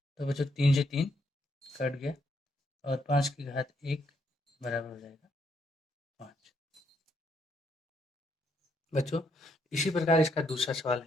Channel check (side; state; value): both; normal; correlation 0.75